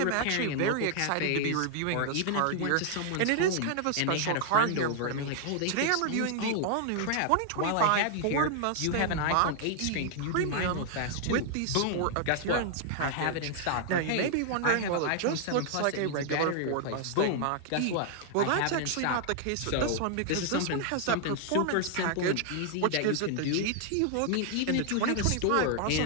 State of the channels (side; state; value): both; different; correlation 0.00